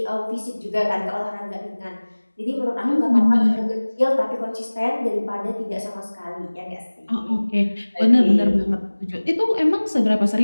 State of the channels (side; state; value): both; inverted; correlation -1.00